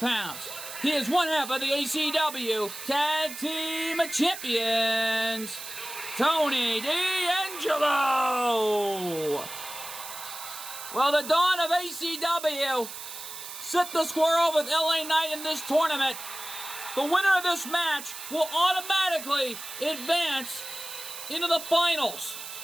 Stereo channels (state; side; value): noise; right; hiss, 10 dB below the sound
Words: He is one half of the ACW Tag Team Champions. Tony D'Angelo. Well, the Dawn of ACW set the square with LA Knight in this tournament. The winner of this match will automatically advance into the finals.